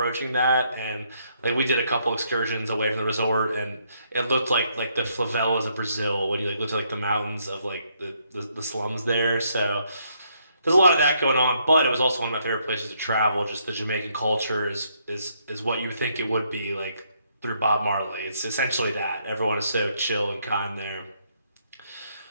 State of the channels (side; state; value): both; inverted; correlation -0.72